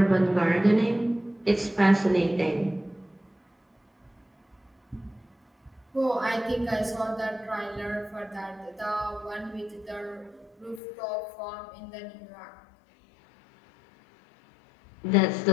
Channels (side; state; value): right; drops out; at 10.8 s